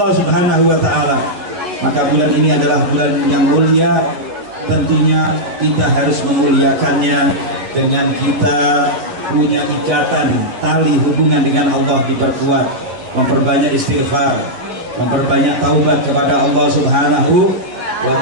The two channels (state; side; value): late; left; 11 ms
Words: Subhanahu wa taala. Maka bulan ini adalah bulan yang mulia, tentunya kita harus memuliakannya dengan kita punya ikatan tali hubungan dengan Allah diperkuat, memperbanyak istighfar, memperbanyak taubat kepada Allah Subhanahu wa